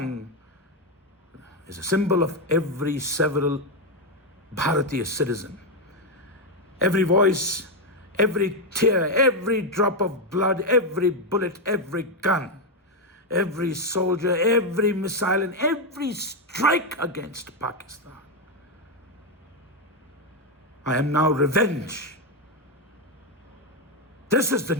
is a symbol of every several Bharatiya citizen. Every voice, every tear, every drop of blood, every bullet, every gun, every soldier, every missile, and every strike against Pakistan. I am now revenge. This is the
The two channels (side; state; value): both; normal; correlation 0.05